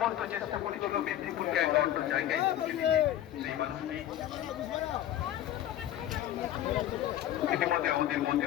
চেষ্টা করেছিল মেদিনীপুরকে এক অন্য জায়গায় সেই মানুষটি ইতিমধ্যে আমাদের মধ্যে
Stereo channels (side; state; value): right; quieter; 12.4 dB